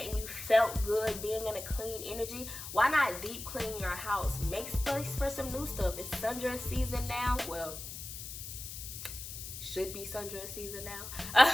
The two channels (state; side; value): noise; left; hiss, 9 dB below the sound